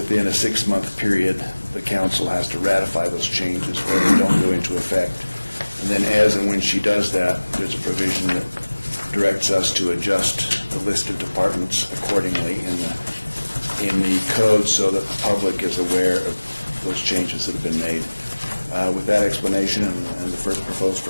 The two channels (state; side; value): inverted; both; correlation -1.00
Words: a 6-month period, the council has to ratify those changes or they don't go into effect. And then as and when she does that, there's a provision that directs us to adjust the list of departments accordingly in the code so that the public is aware of those changes that have been made. With that explanation and the proposed